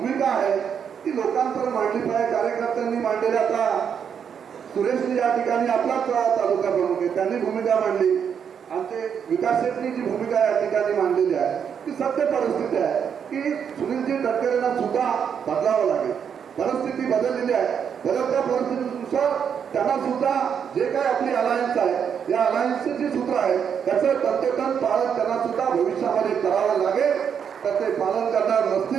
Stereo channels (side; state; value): left; quieter; 7.6 dB